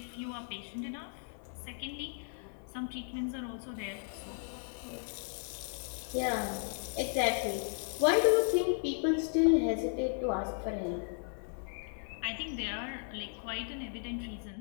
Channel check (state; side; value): silent; right; 54 dB below the other